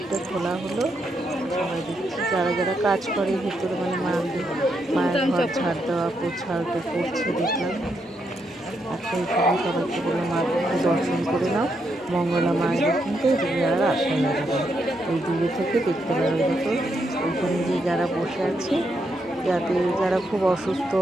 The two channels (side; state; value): both; normal; correlation 0.80